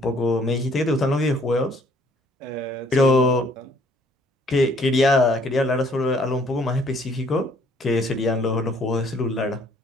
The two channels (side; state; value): both; normal; correlation 0.62